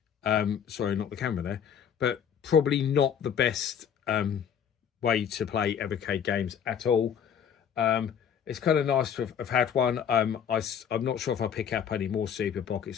Sorry, not the camera there, but probably not the best way to play Evercade games at all. It's kind of nice to have had one. I'm not sure if I'll pick up any more Super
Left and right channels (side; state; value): right; quieter; 8.2 dB